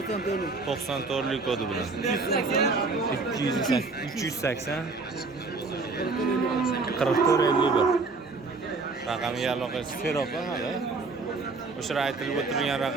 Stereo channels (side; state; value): left; quieter; 3.9 dB